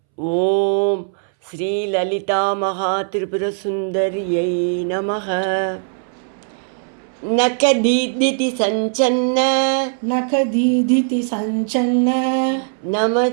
ఓం శ్రీ లలితా మహాత్రిపురసుందర్యై నమః. నఖదీదితి సంచన్న నఖదీదితి సంచన్న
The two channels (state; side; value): silent; left; 66 dB below the other